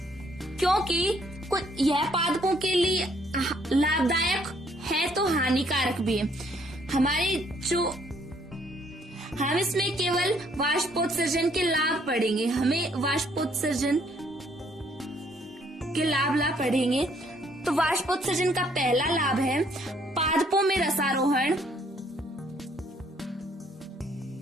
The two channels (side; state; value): both; normal; correlation 0.66